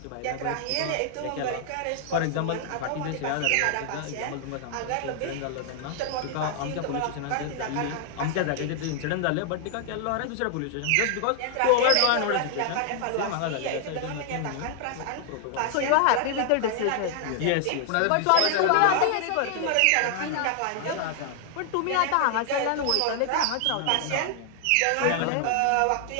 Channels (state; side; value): different; both; correlation 0.00